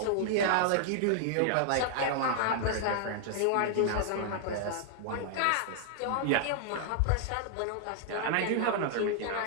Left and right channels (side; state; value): both; different; correlation 0.00